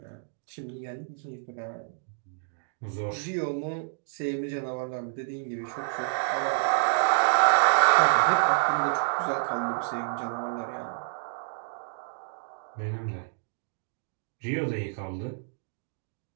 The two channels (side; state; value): left; silent; digital silence